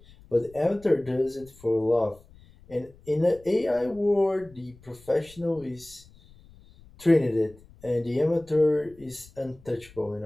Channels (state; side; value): noise; left; rumble, 25 dB below the sound